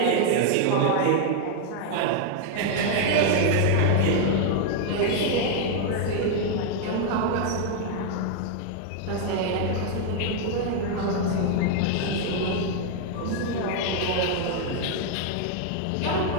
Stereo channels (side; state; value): both; different; correlation 0.00